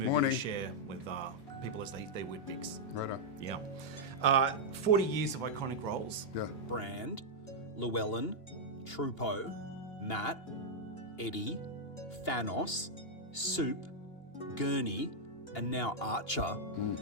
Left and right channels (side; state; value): right; late; 2.8 ms